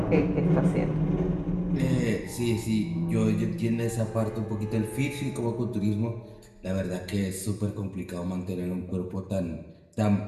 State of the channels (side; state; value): both; identical; correlation 1.00